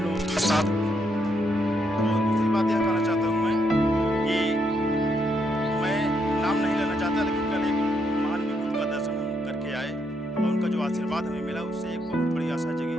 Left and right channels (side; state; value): both; normal; correlation 0.77